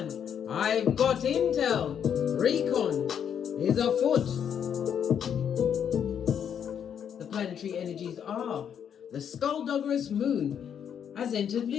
I've got intel. Recon is afoot. The planetary energies are the skullduggerous moon has entered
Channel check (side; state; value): right; quieter; 8.4 dB